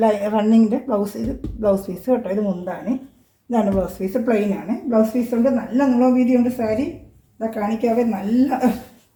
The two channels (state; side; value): identical; both; correlation 1.00